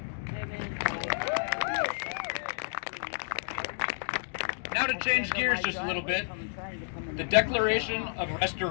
Now to change gears just a little bit, the Declaration of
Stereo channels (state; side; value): silent; right; digital silence